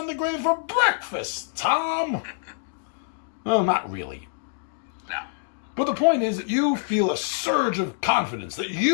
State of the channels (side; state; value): right; silent; digital silence